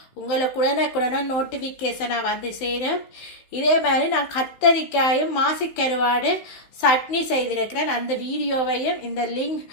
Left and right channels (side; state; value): right; late; 16 ms